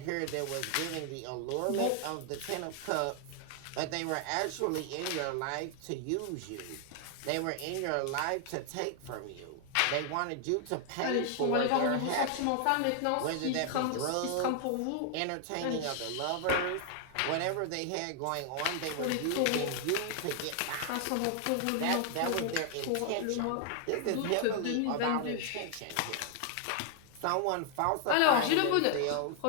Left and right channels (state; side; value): different; both; correlation 0.00